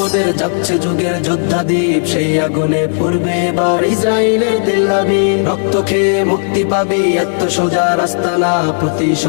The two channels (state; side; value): silent; right; digital silence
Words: যাচ্ছে যুগের যোদ্ধা দ্বীপ। সেই আগুনে পূর্বে এবার ইসরায়েলের তেল আবিব। রক্ত খেয়ে মুক্তি পাবি, এত সোজা রাস্তা না।